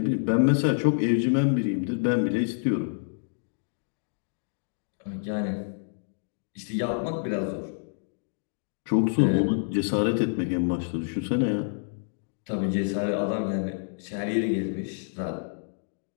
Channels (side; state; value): right; silent; digital silence